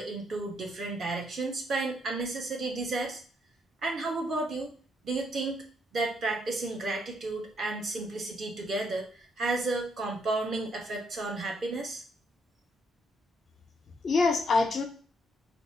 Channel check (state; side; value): normal; both; correlation 0.73